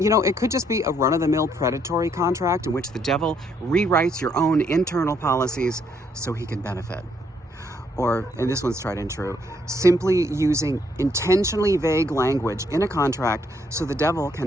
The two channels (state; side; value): normal; both; correlation 0.71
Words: could just be a run-of-the-mill predatory contract in which the devil rewrites your own internal policies so he can benefit. Or, and this one's tried and true, simply using intentionally vague language in a contract so the devil